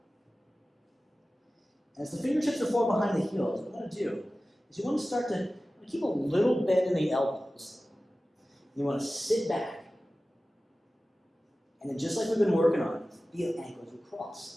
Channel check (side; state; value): both; normal; correlation 0.96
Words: And as the fingertips are forward behind the heels, what you want to do is you want to start to keep a little bend in the elbows. You want to sit back. And then just like we've been working on, feel ankles across.